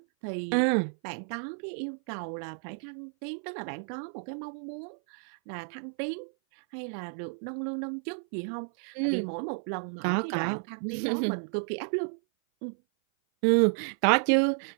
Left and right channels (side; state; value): left; silent; 56 dB below the other